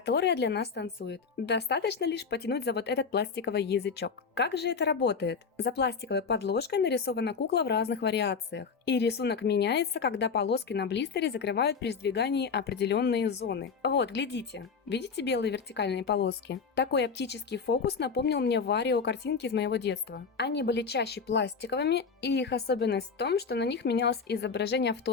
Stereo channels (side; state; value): right; quieter; 5.5 dB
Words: для нас танцует. Достаточно лишь потянуть за вот этот пластиковый язычок. Как же это работает? За пластиковой подложкой нарисована кукла в разных вариациях. И рисунок меняется, когда полоски на блистере закрывают при сдвигании определенные зоны. Вот, глядите. Видите белые вертикальные полоски? Такой оптический фокус напомнил мне Варио картинки из моего детства. Они были чаще пластиковыми, и их особенность в том, что на них менялось изображение в